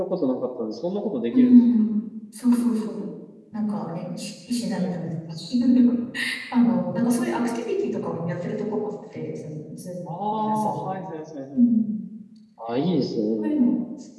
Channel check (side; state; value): both; identical; correlation 1.00